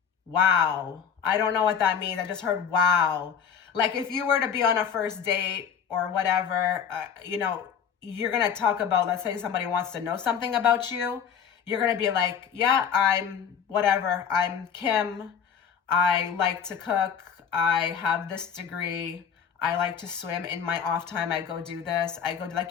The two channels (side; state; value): right; quieter; 7.5 dB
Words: wow. I don't know what that means. I just heard wow. Like if you were to be on a first date or whatever, you know, you're going to talk about, let's say somebody wants to know something about you. You're going to be like, yeah, I'm whatever. I'm Kim. I like to cook. I have this degree. I like to swim. In my off time, I go do this. I go